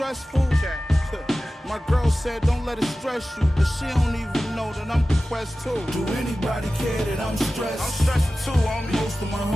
My girl said don't let it stress you, but she don't even know that I'm depressed too. Do anybody care that I'm stressed? I'm stressed too, homie. Most of my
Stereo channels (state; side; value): normal; both; correlation 0.95